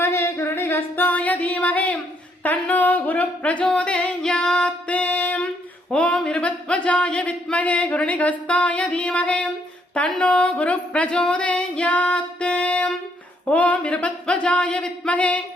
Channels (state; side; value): normal; both; correlation 0.71